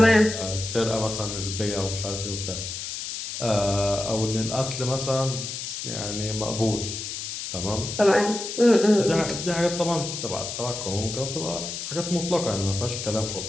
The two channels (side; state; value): left; noise; hiss, 6 dB below the sound